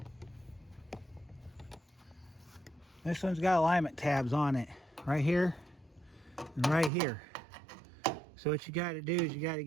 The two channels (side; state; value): left; drops out; at 6.9 s